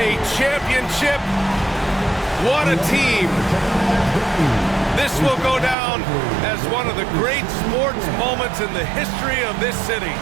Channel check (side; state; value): left; drops out; at 5.8 s